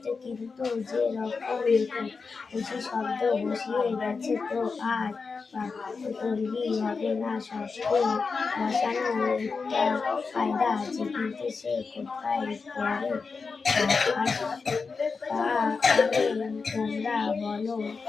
কিন্তু যে রকম বেশি শব্দ বসিয়ে গেছে তো আর তৈরি হবে না। শব্দ বসানো একটা ফায়দা আছে, কিন্তু সে কোথায় পড়ে তোমরা বলো।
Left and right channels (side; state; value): right; quieter; 4.7 dB